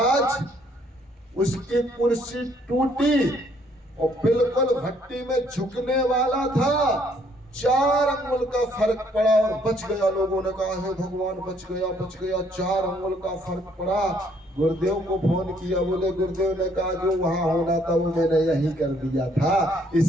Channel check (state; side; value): normal; both; correlation 0.66